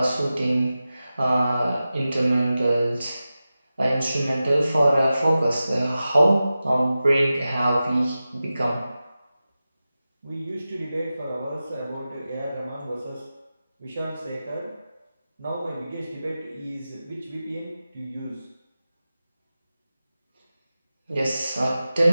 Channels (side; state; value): both; inverted; correlation -0.94